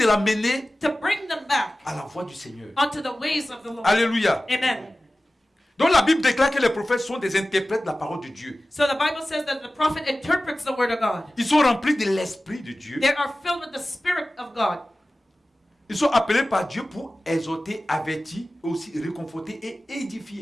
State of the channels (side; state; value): both; normal; correlation 0.96